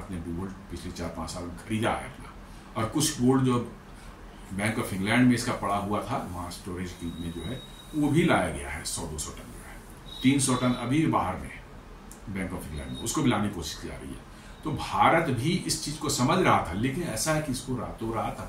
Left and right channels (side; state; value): both; identical; correlation 1.00